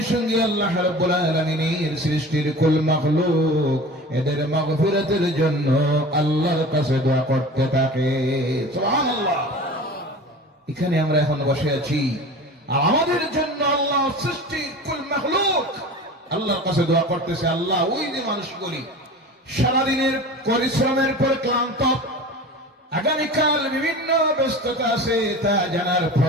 সঙ্গে আল্লাহ রাব্বুল আলামিনের সৃষ্টির কুল মাখলুক এদের মাগফিরাতের জন্য আল্লাহর কাছে দোয়া করতে থাকে। সুবহানাল্লাহ। এখানে আমরা এখন বসে আছি আর আমাদের জন্য আল্লাহ সৃষ্টির কুল মাখলুক আল্লাহর কাছে দোয়া করতেছে। আল্লাহ, ওই যে মানুষগুলি সারাদিনের পরিশ্রমের পর ক্লান্ত, আগামীকাল বিভিন্ন ব্যস্ততা আছে তা জানার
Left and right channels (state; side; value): normal; both; correlation 0.36